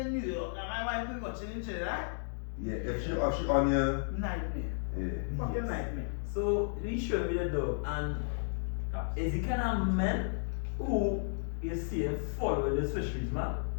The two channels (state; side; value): silent; right; digital silence